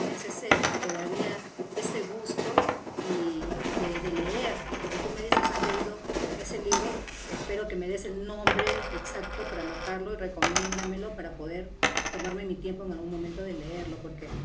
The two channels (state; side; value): identical; both; correlation 1.00